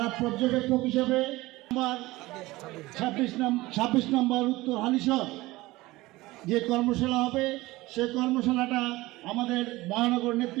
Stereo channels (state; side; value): quieter; left; 19.5 dB